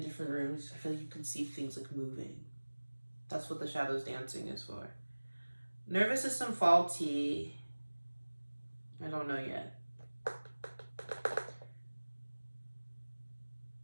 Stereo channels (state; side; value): inverted; both; correlation -1.00